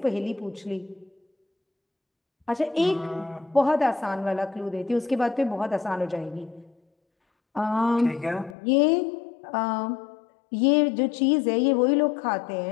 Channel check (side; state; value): right; drops out; at 8.6 s